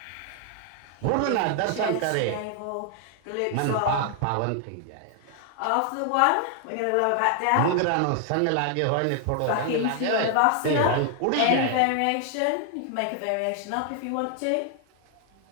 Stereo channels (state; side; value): different; both; correlation 0.00